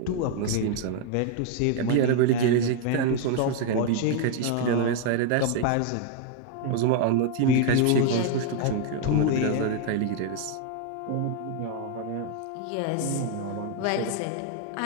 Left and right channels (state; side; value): different; both; correlation 0.00